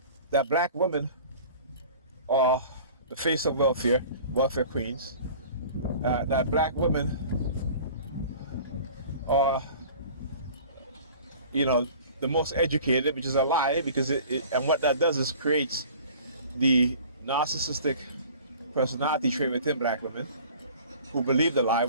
that black women are the face of welfare queens, that black women are, the most educated, which is a lie, because and what that does is creates the narcissistic personality trait within black women who believe the lie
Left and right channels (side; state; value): both; inverted; correlation -0.45